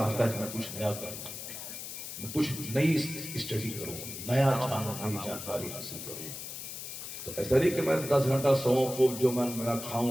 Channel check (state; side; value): noise; left; hiss, 9 dB below the sound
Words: ہے کہ میں کچھ نیا کروں، میں کچھ نئی اسٹڈی کروں، نیا جانوں، نئی جانکاری حاصل کروں۔ تو ایسا نہیں کہ میں 10 گھنٹہ سوؤں، خوب جو میں